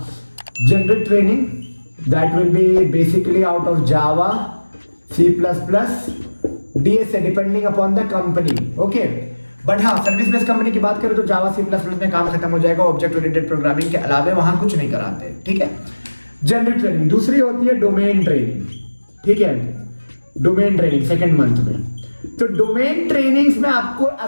generic training that will be basically out of Java, C++, DSA depending upon the company. Okay, but हाँ service based company की बात करें तो Java, C++ में काम खत्म हो जाएगा। ऑब्जेक्ट ओरिएंटेड प्रोग्रामिंग के अलावे वहां कुछ नहीं कराते, ठीक है। जनरिक ट्रेनिंग दूसरी होती है, डोमेन ट्रेनिंग, ठीक है। डोमेन ट्रेनिंग सेकेंड मंथ में, तो डोमेन ट्रेनिंग्स में आपको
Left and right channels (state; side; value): inverted; both; correlation -1.00